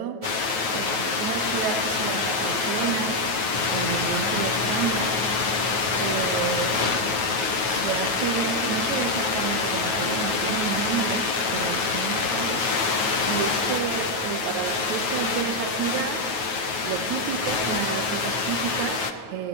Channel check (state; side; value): late; left; 9.3 ms